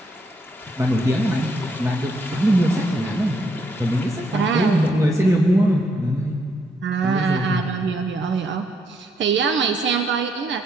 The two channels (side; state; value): both; normal; correlation 0.74